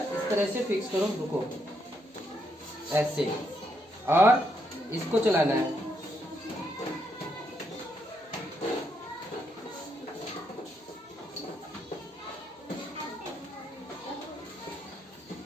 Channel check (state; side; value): normal; both; correlation 0.77